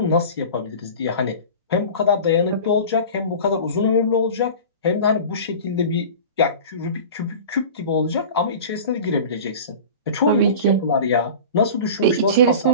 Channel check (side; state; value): both; inverted; correlation -0.36